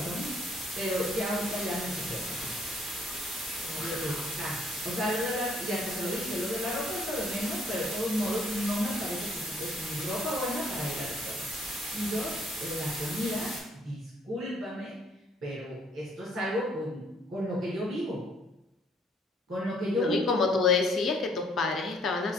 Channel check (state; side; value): normal; both; correlation 0.65